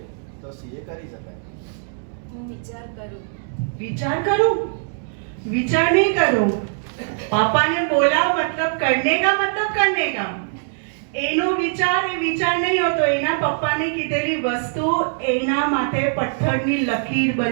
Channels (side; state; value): left; silent; 64 dB below the other